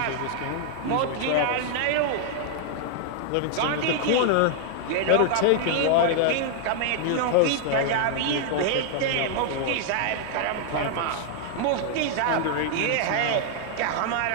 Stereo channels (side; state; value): both; different; correlation 0.00